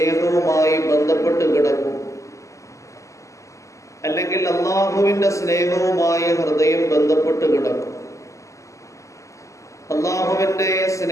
ബന്ധപ്പെട്ട് കിടക്കും, അല്ലെങ്കിൽ അള്ളാഹുവിന്റെ സ്നേഹവുമായി ഹൃദയം ബന്ധപ്പെട്ട് കിടക്കും. അള്ളാഹുവിന്റെ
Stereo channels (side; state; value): right; late; 0.15 ms